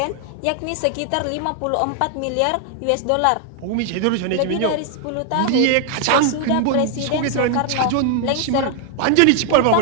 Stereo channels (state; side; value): different; both; correlation 0.00